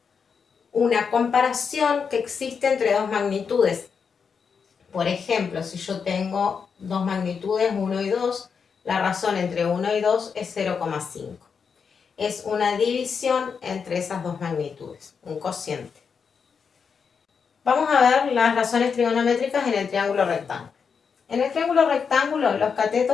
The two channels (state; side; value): quieter; right; 6.1 dB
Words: una comparación que existe entre dos magnitudes. Por ejemplo, si yo tengo dos magnitudes, 1 y 2, la razón entre 1 y 2 es 0,5. Es una división entre esas dos magnitudes, un cociente. Vamos a ver las razones trigonométricas en el triángulo rectángulo. En el triángulo rectángulo, los